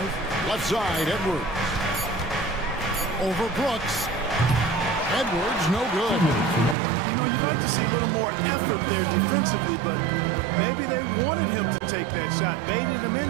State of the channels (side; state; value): left; drops out; at 6.8 s